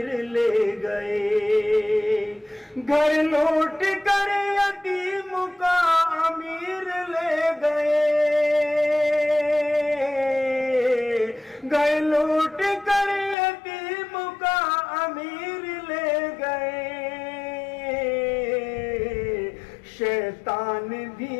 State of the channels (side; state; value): right; drops out; at 13.4 s